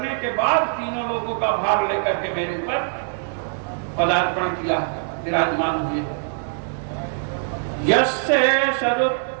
के बाद तीनों लोगों का भार लेकर के मेरे ऊपर पदार्पण किया, विराजमान हुए। यस्य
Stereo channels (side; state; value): left; silent; digital silence